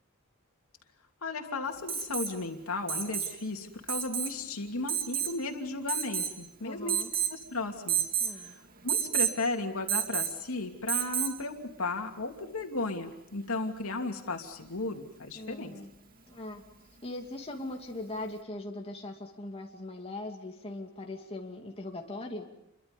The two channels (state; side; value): normal; both; correlation 0.07